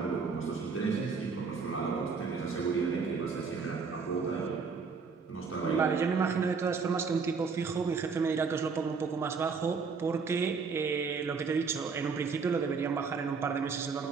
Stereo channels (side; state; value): left; quieter; 5.2 dB